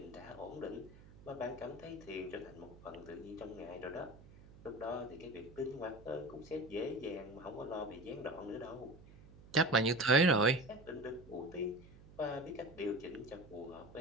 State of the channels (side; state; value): right; noise; hum, 20 dB below the sound